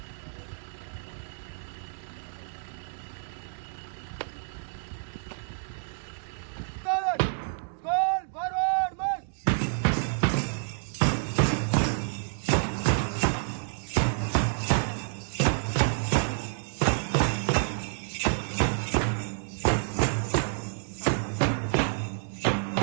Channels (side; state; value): left; silent; digital silence